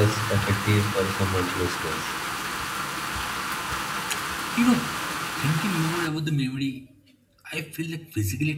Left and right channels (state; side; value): identical; both; correlation 1.00